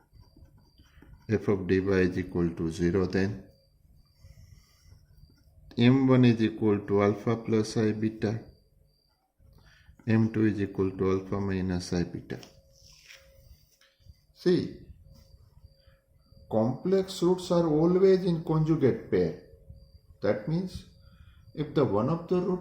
f of dy is equal to 0, then m1 is equal to alpha plus I beta, m2 is equal to alpha minus I beta. See, complex roots are always in conjugate pair. That means if the one of the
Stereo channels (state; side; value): identical; both; correlation 1.00